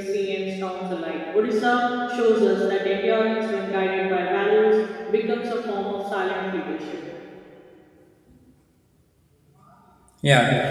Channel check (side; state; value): both; identical; correlation 1.00